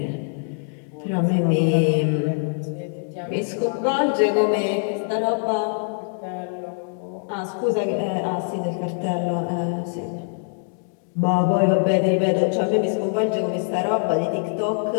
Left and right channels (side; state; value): right; silent; 63 dB below the other